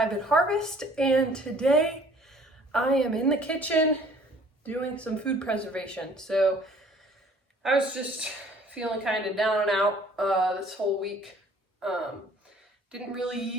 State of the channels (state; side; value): normal; both; correlation 0.54